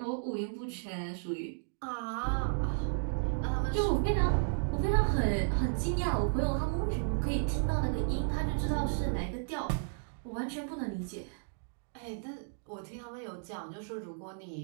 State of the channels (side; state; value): left; silent; digital silence